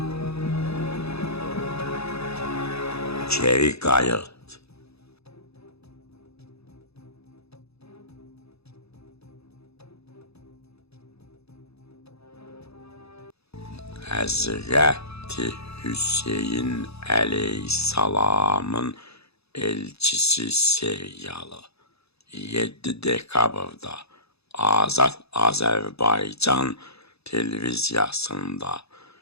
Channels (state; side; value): late; right; 0.79 ms